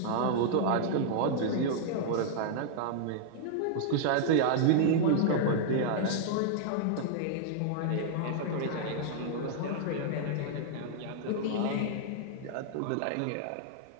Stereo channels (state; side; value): different; both; correlation -0.01